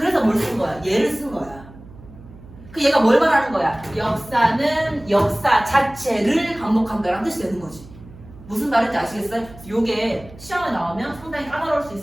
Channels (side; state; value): right; noise; hum, 19 dB below the sound